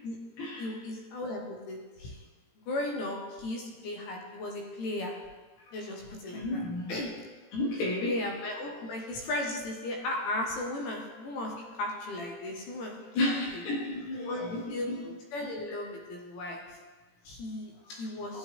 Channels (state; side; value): late; right; 18 ms